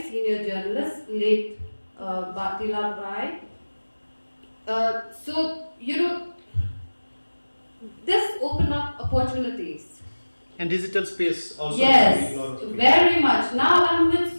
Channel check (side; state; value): both; inverted; correlation -1.00